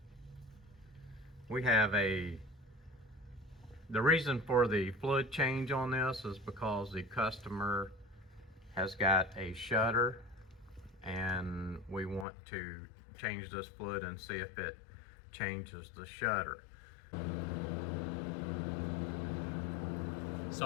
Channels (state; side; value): drops out; right; at 12.2 s